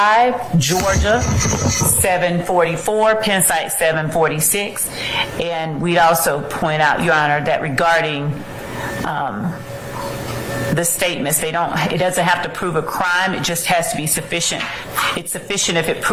Georgia 744, Penn site 746. And we'd also point out, Your Honor, that regarding the statements, it doesn't have to prove a crime, it just has to be sufficient. It's sufficient if it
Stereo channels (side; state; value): both; identical; correlation 1.00